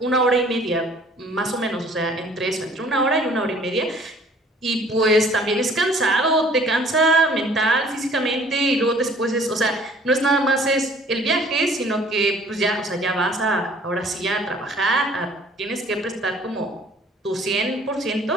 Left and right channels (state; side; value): normal; both; correlation 0.55